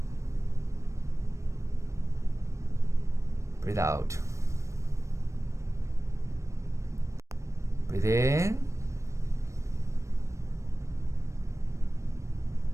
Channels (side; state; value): left; late; 0.15 ms